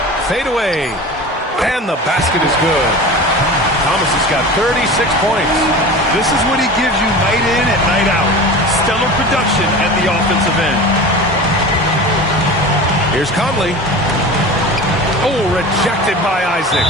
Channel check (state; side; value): normal; both; correlation 0.34